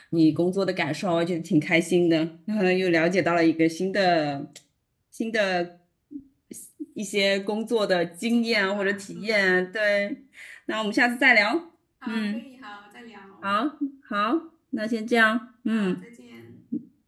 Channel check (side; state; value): both; identical; correlation 1.00